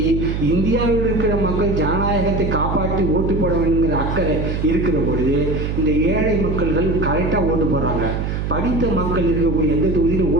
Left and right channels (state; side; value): noise; right; hum, 2 dB below the sound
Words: இந்தியாவில் இருக்கிற மக்கள் ஜனநாயகத்தை காப்பாற்றி ஓட்டு போட வேண்டுங்கிற அக்கறை இருக்கிற பொழுது இந்த ஏழை மக்கள்கள் கரெக்டாக ஓட்டு போடுறாங்க. படித்த மக்கள் இருக்கக்கூடிய எந்த தொகுதியிலும்